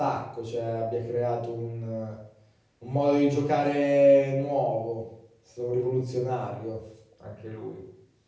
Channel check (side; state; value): both; identical; correlation 1.00